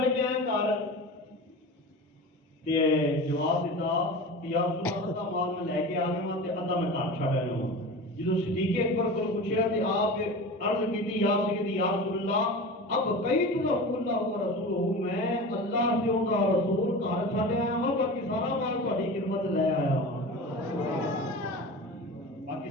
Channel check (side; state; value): both; normal; correlation 0.32